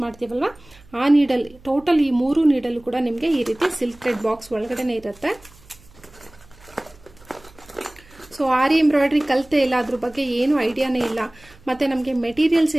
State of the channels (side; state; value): right; noise; hum, 25 dB below the sound